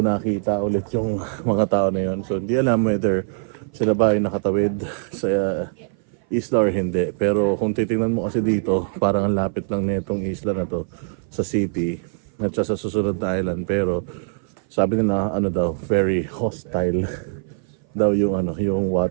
nakita ulit yung mga tao na yon. So hindi alam whether sila ba ay nakatawid sa isla or hindi. Pero kung titingnan mo kasi dito, parang ang lapit lang nitong isla na to sa city at sa susunod na island. Pero sabi nila very hostile daw yung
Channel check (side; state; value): left; silent; 58 dB below the other